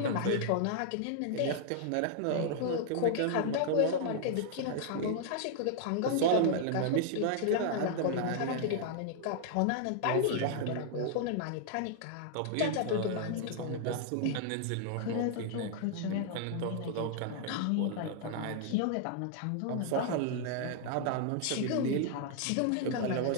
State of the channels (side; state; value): both; different; correlation -0.01